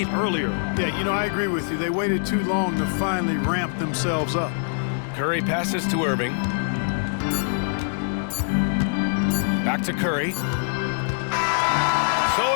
earlier. Yeah, you know, I agree with you. They waited too long to finally ramp themselves up. Curry passes to Irving. Back to Curry. So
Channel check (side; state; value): right; silent; 63 dB below the other